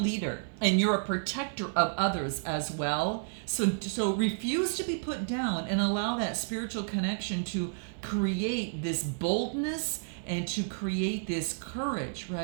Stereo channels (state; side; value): silent; left; 57 dB below the other